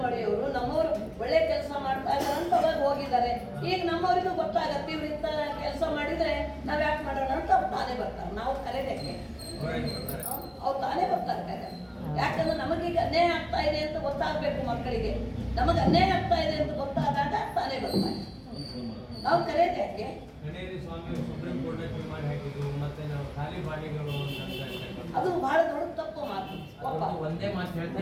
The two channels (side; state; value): both; identical; correlation 1.00